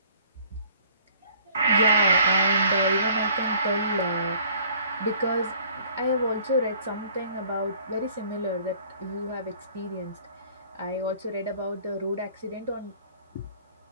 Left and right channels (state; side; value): inverted; both; correlation -0.56